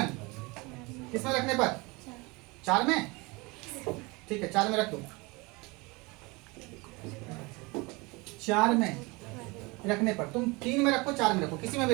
किसमें रखने पर, 4 में, ठीक है 4 में रख दो, 4 में रखने पर, तुम 3 में रखो, 4 में रखो, किसी में भी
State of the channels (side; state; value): left; quieter; 25.6 dB